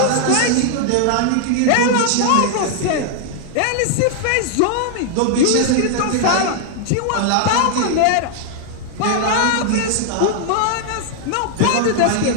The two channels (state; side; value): different; both; correlation 0.00